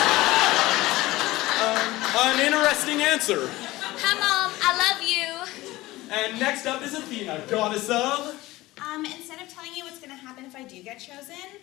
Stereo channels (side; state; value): right; quieter; 18.5 dB